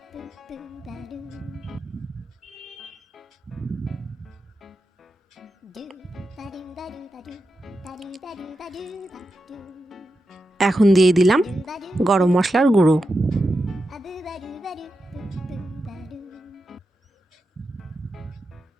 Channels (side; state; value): both; normal; correlation 0.89